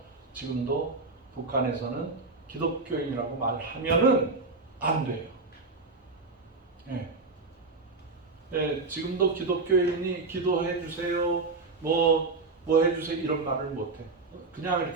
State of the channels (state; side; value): quieter; left; 3.8 dB